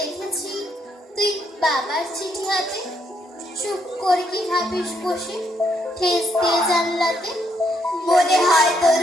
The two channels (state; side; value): normal; both; correlation 0.74